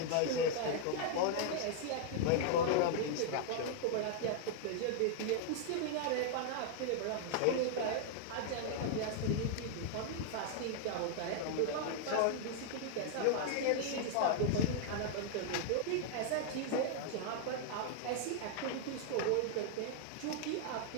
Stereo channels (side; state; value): both; different; correlation -0.01